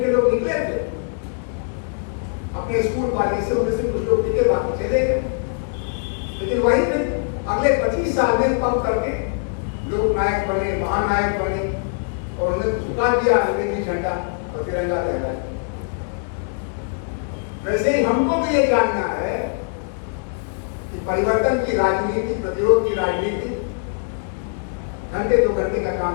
लोग निकले थे अपने स्कूल कॉलेज से, उनमें से कुछ लोग टिके, बाकी चले गए। लेकिन वही फिर अगले 25 साल में पंप करके लोग नायक बने, महानायक बने, और उन्हें झुका दिया अंग्रेजी झंडा और तिरंगा लहराया। वैसे ही हमको भी ये जानना है कि परिवर्तन की राजनीति, प्रतिरोध की राजनीति घंटे 2 घंटे का काम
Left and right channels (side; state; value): right; silent; digital silence